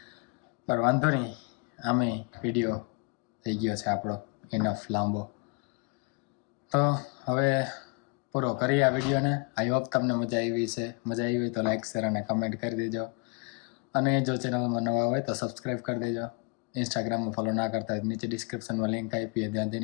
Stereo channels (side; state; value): right; quieter; 30.6 dB